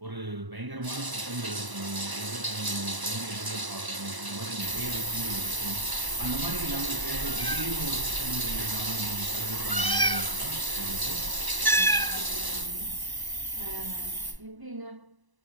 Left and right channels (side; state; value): left; late; 1.0 ms